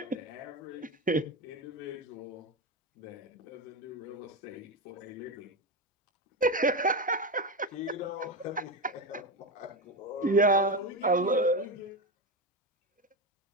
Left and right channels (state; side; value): normal; both; correlation 0.15